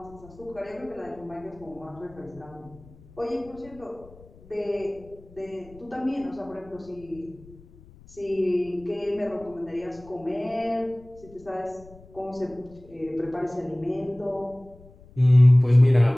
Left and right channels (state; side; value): noise; left; rumble, 23 dB below the sound